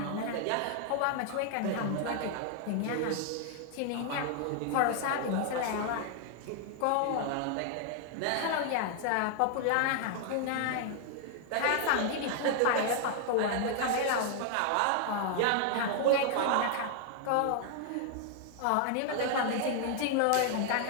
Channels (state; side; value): different; both; correlation 0.00